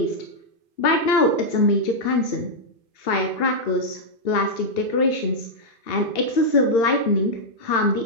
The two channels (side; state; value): right; late; 2.7 ms